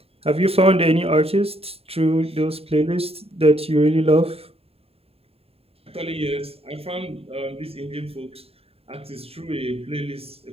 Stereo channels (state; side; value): late; left; 0.28 ms